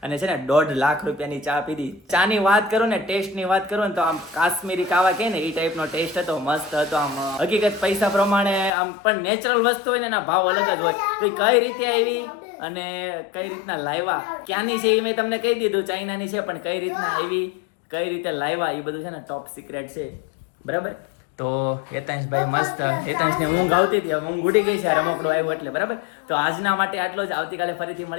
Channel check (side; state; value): right; drops out; at 8.7 s